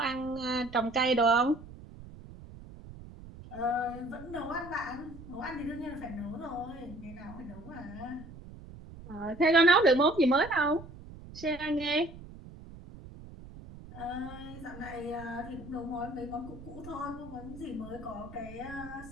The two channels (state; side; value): noise; right; rumble, 16 dB below the sound